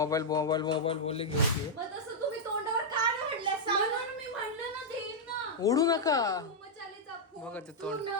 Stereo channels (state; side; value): normal; both; correlation -0.04